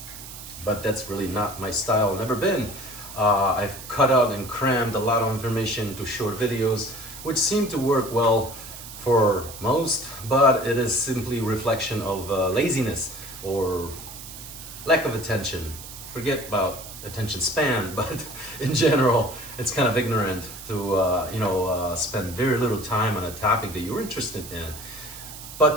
but that's really not my style, never been. I've cut out and crammed a lot of information into short videos, which seem to work well for most, but it is simply reflection of laziness or lack of attention. Forget about attention span, but in general, it's kind of ignorant to spend very little time on a topic that you're interested in.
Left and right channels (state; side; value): noise; right; hiss, 13 dB below the sound